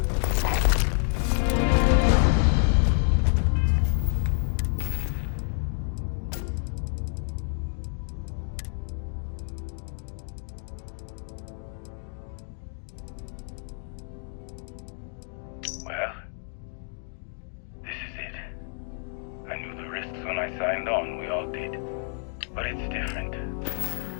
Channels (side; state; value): right; silent; 55 dB below the other